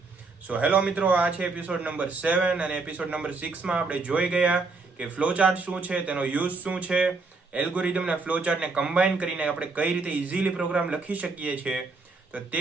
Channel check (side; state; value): left; quieter; 3.9 dB